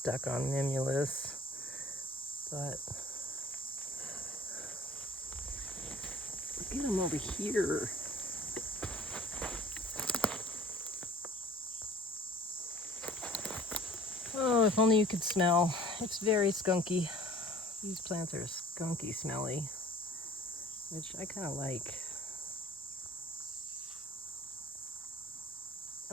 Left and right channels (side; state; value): both; normal; correlation 0.49